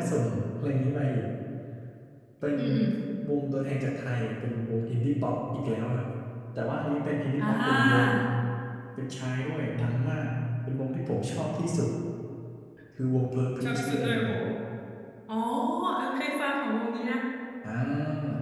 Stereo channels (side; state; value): both; identical; correlation 1.00